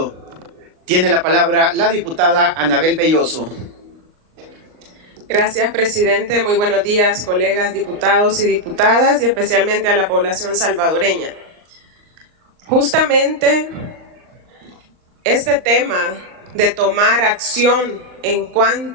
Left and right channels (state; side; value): late; left; 39 ms